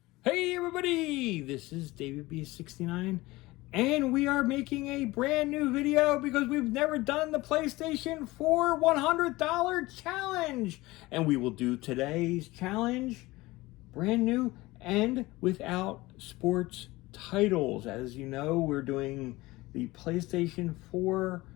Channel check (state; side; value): quieter; right; 20.1 dB